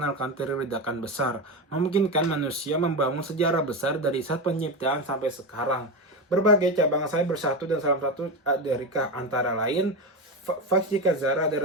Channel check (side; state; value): both; normal; correlation 0.17